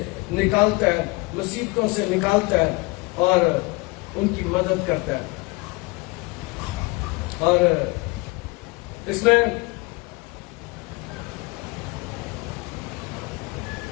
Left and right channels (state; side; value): quieter; right; 25.9 dB